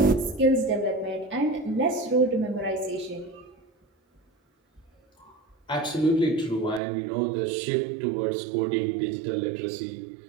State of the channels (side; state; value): left; drops out; at 6.8 s